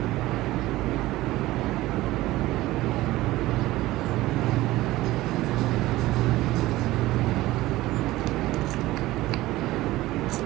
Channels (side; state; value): left; quieter; 17.4 dB